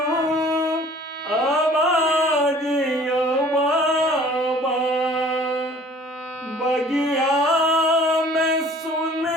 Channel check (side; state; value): both; normal; correlation 0.51